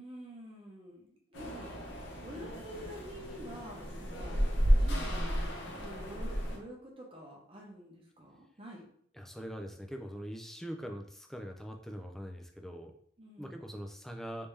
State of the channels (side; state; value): both; normal; correlation 0.93